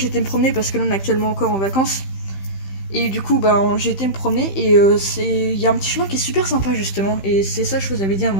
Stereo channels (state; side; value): late; right; 15 ms